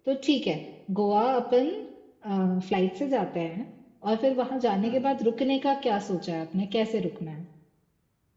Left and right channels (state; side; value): identical; both; correlation 1.00